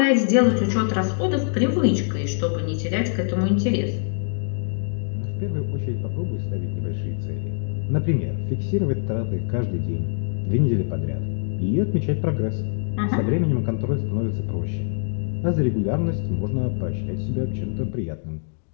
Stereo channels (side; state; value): right; silent; 63 dB below the other